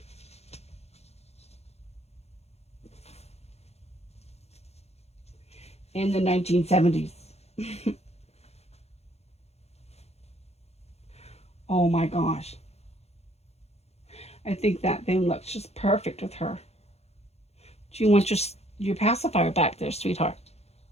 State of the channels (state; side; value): late; right; 0.31 ms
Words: In the 1970s. Oh my gosh. I think that thing looks just perfect with her. Do you want your pacifier back there, sweetheart?